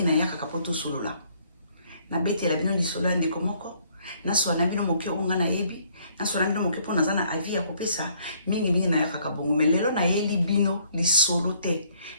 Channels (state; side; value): inverted; both; correlation -0.65